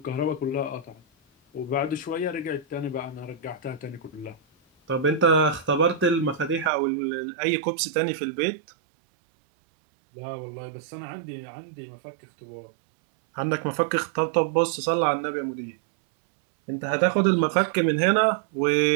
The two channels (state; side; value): drops out; left; at 6.7 s